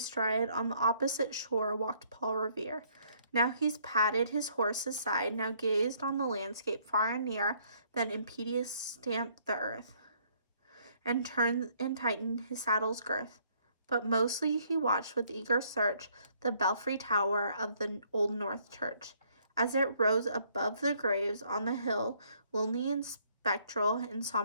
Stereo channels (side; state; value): both; inverted; correlation -0.66